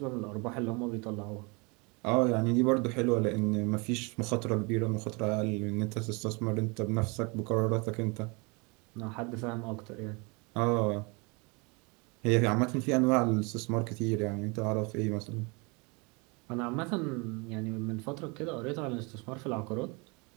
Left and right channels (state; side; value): quieter; left; 29.7 dB